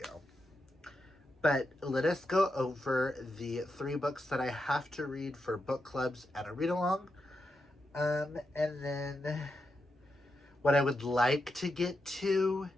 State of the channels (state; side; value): normal; both; correlation 0.86